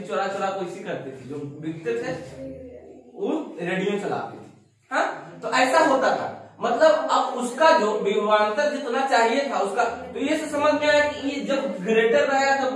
चोरा चोरा को इसी करते थे, जो बिकते थे वो रेडियो चलाते थे। हाँ, तो ऐसा होता था, मतलब अब उसका जो विभवांतर जितना चाहिए था उसका, तो ये से समझ में आया कि ये जब ग्रेटर रहेगा तो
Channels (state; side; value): identical; both; correlation 1.00